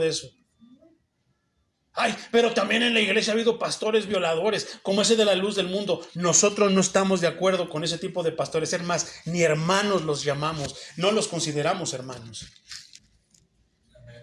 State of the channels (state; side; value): identical; both; correlation 1.00